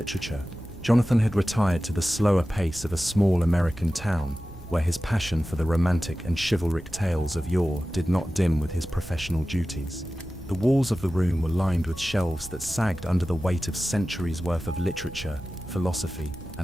Jonathan had retired to the slower pace of a small American town, where his passion for the romantic and chivalric tales of yore did not dim with his professional duties. The walls of the room were lined with shelves that sagged under the weight of centuries' worth of literature, philosophy,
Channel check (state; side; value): noise; right; rumble, 16 dB below the sound